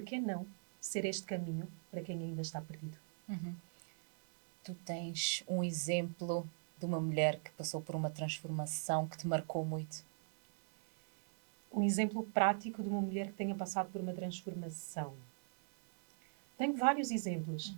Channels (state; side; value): silent; left; digital silence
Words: que não ser este caminho para quem ainda está perdido? Tu tens um exemplo de uma mulher que passou por uma transformação que te marcou muito? Um exemplo prático de uma mulher que tenha passado por uma transformação. Tenho vários exemplos.